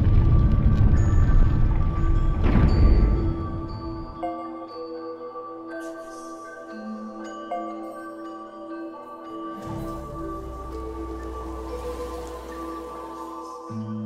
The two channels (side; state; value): both; identical; correlation 1.00